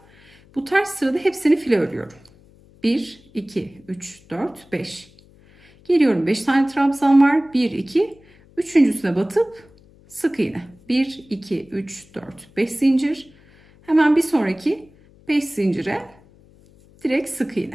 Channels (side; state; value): left; noise; hum, 27 dB below the sound